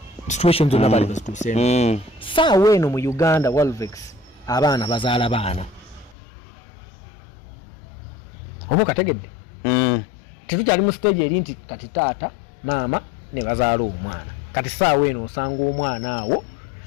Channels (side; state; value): right; drops out; at 6.2 s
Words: situations zonna bali bazituuseemu. Saawa eno mu Uganda Walvex abaana bazaala baana oba okategedde tetukyali mu stage eri nti kati taata maama ne bazaala omwana. Kati saawa eno osanga omwana awo